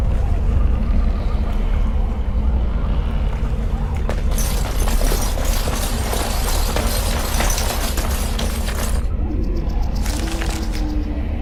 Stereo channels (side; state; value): both; identical; correlation 1.00